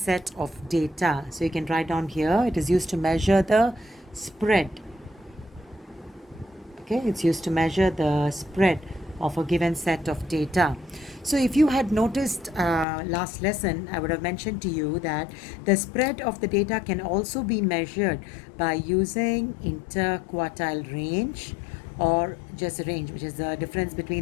of data. So you can write down here, it is used to measure the spread. Okay, it's used to measure the spread of a given set of data. So if you had noticed last lesson, I would have mentioned to you that the spread of the data can also be measured by using interquartile range or just range, which is the difference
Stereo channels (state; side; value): drops out; right; at 12.9 s